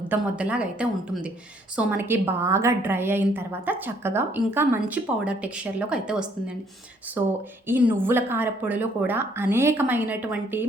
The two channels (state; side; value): normal; both; correlation 0.65